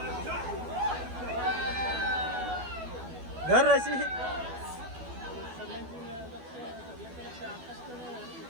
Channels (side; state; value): left; late; 12 ms